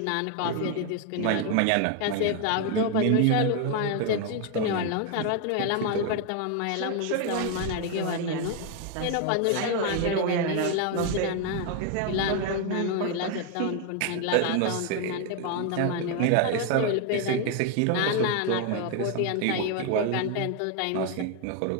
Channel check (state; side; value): different; both; correlation 0.01